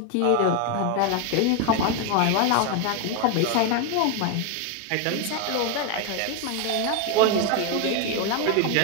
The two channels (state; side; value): different; both; correlation 0.01